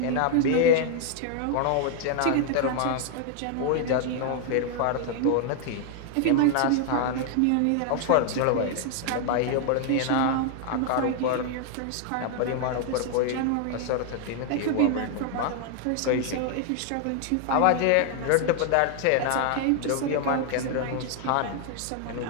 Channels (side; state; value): both; different; correlation 0.00